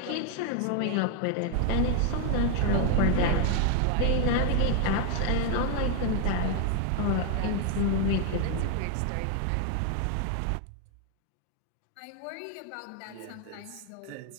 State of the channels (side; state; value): both; different; correlation 0.00